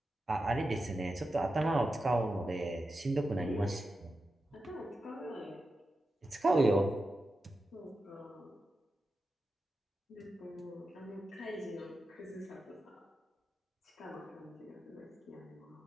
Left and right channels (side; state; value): both; normal; correlation 0.90